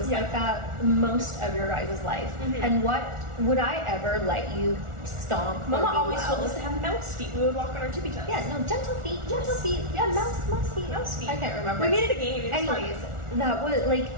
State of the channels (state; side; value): late; left; 1.4 ms